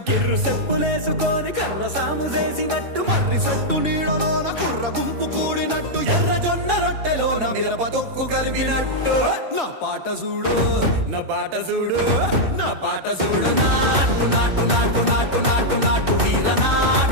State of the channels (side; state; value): left; late; 2.6 ms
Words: కిర్రు చెప్పులేసుకొని కర్ర సాము చేసినట్టు మర్రి చుట్టు నీడలోన కుర్ర గుంపు కూడినట్టు ఎర్ర జొన్న రొట్టెలోన మిరప దొక్కు కలిపినట్టు నా పాట చూడు నా పాట చూడు నా పాట చూడు నాటు నాటు నాటు నాటు నాటు నాటు వీర